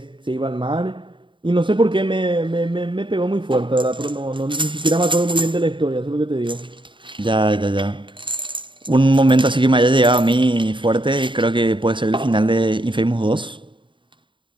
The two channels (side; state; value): left; late; 0.24 ms